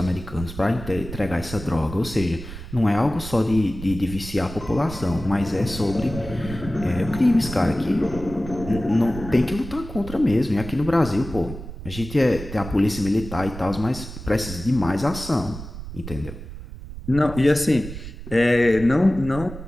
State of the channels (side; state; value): right; noise; rumble, 11 dB below the sound